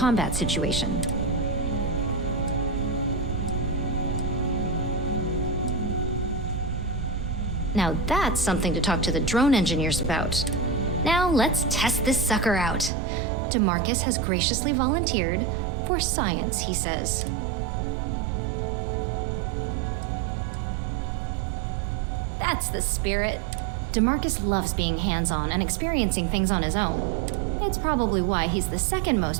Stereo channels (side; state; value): left; drops out; at 12.9 s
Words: situation. Now that's something to talk to the drone engineers about. Now let's test this sucker out. DeMarcus has graciously volunteered for science, he says. That's the spirit. DeMarcus loves being hands-on and experiencing things on his own. It's probably why he's the second